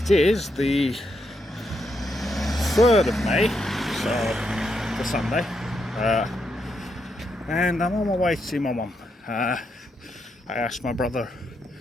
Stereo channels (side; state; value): both; normal; correlation 0.80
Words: is the 3rd of May, so the Sunday, and I'm on my way to see my mum. I asked my brother